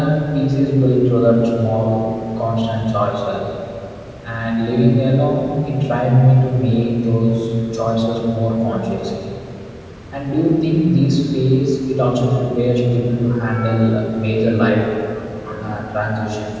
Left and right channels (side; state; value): both; identical; correlation 1.00